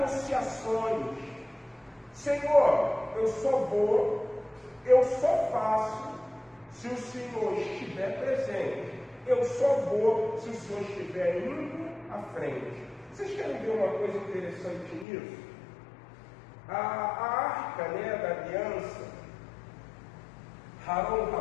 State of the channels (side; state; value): right; drops out; at 15.1 s